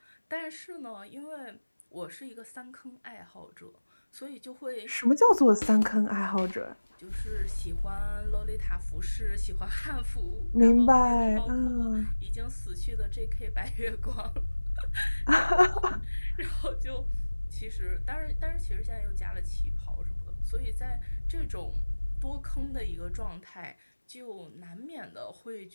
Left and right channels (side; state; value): both; inverted; correlation -1.00